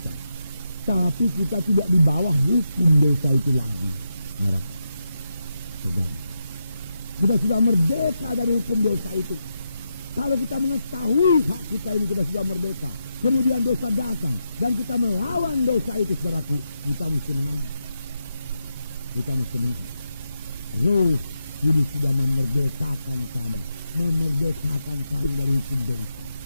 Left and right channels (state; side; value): inverted; both; correlation -0.86